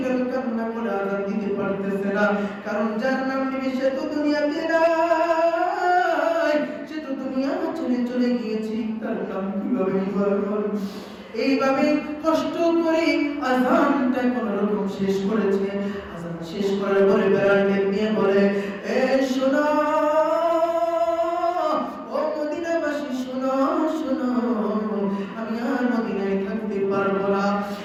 কান্না করে আযান দিতে পারতেছে না, কারণ যার নাম নিবে সে তো দুনিয়াতে নাই, সে তো দুনিয়া ছেড়ে চলে গিয়েছে, তার নাম কিভাবে বলবো? এইভাবে কষ্ট করে আযানটা কোন রকম শেষ করেছে। আযান শেষ করার পরে বিলাল নিয়ে বলে, এ শোনো ও মদিনাবাসী, শোনো শোনো, আমি আর মদিনায় থাকতে পারবো না,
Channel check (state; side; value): identical; both; correlation 1.00